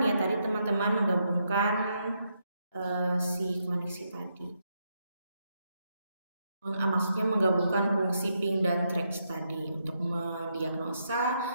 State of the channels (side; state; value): both; inverted; correlation -0.80